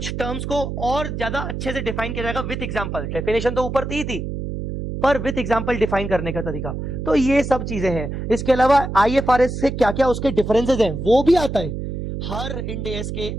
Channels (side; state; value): right; noise; hum, 5 dB below the sound